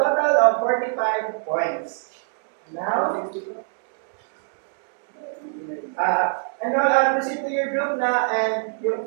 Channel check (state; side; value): silent; left; digital silence